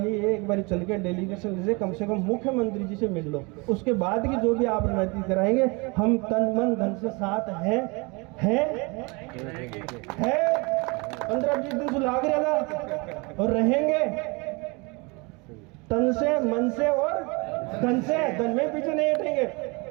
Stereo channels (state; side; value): quieter; left; 28.3 dB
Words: एक बार चल के डेलीगेशन से कम मुख्यमंत्री जी से मिल लो, उसके बाद की जो भी आप रणनीति कराएंगे हम तन मन धन से साथ है 15-20 दिन से लाग रहेगा और रहेंगे तन से मन से और धन से, धन में पीछे नहीं हटेंगे।